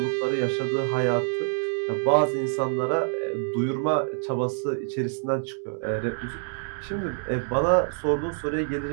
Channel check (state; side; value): silent; left; digital silence